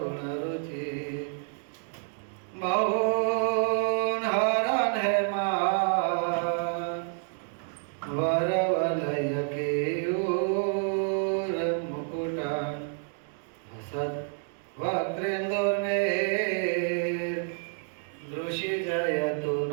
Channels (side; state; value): left; silent; 57 dB below the other